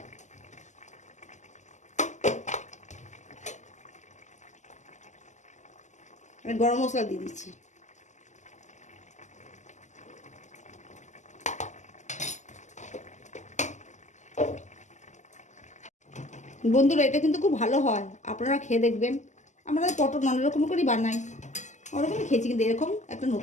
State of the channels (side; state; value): right; late; 0.34 ms